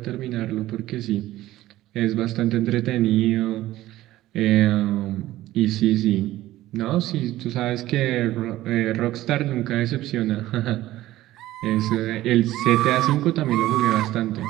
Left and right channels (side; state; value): left; quieter; 15.5 dB